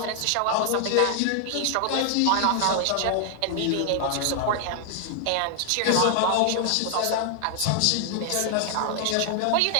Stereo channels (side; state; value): both; different; correlation 0.00